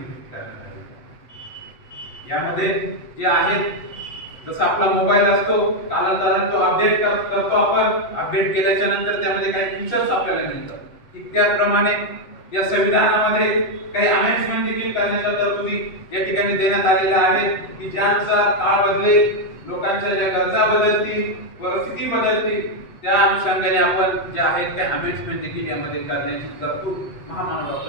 करण्यात आली। यामध्ये जे आहेत जसं आपला मोबाईल असतो कालांतराने तो अपडेट करतो आपण, अपडेट केल्याच्या नंतर त्यामध्ये काही फीचर्स आपल्याला मिळतात, ठीक त्याप्रमाणे या संविधानामध्ये काही अमेंडमेंट देखील करण्याच्या तरतुदी या ठिकाणी देण्यात आलेल्या आहेत की ज्यानुसार काळ बदलेल, लोकांच्या ज्या गरजा बदलतील, परिस्थिती बदलतील, त्या अनुषंगाने आपण जे आहेत त्या अमेंडमेंट देखील यामध्ये करण्याची तरतूद महामानव डॉक्टर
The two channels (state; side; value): late; right; 7.9 ms